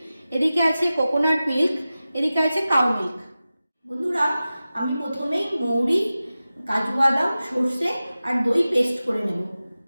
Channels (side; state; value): both; inverted; correlation -0.95